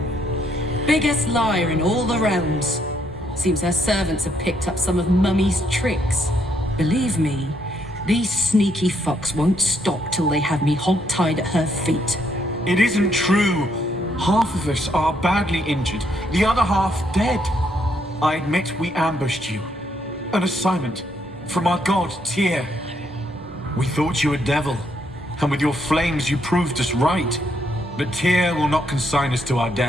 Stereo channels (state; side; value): normal; both; correlation 0.74